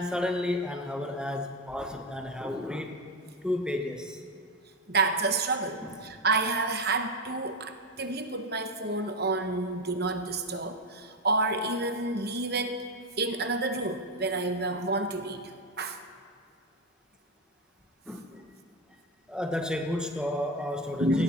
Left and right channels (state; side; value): normal; both; correlation 0.13